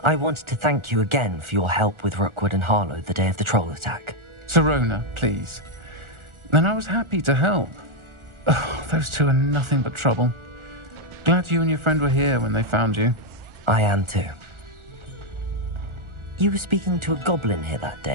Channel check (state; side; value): late; left; 1.4 ms